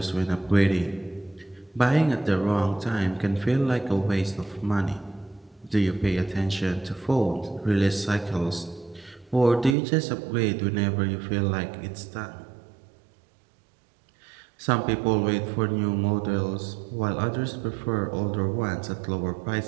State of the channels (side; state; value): left; drops out; at 9.8 s